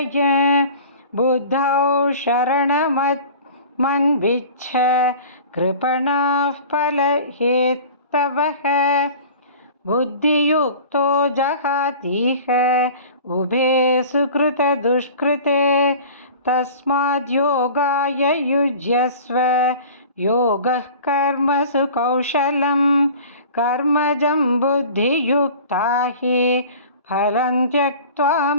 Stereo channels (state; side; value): inverted; both; correlation -0.41